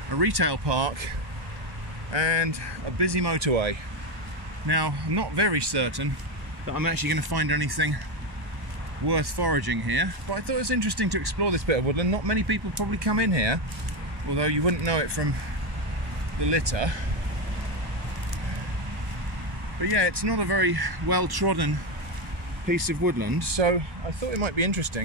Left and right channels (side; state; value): left; late; 1.1 ms